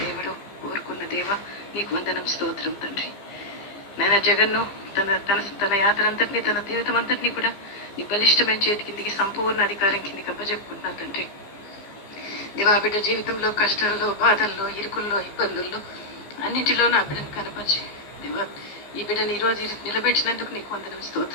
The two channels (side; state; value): right; late; 15 ms